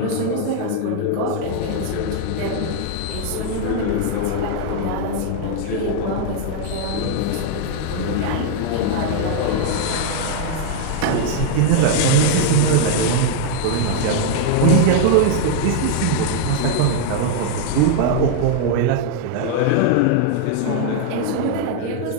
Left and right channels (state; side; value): different; both; correlation 0.00